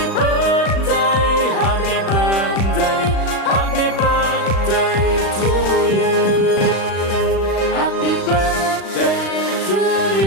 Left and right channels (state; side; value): late; right; 36 ms